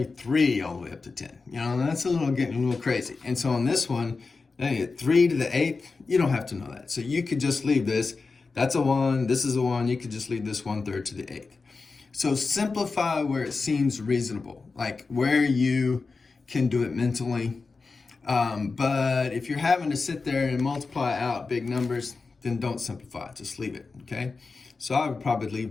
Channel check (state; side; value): quieter; right; 4.2 dB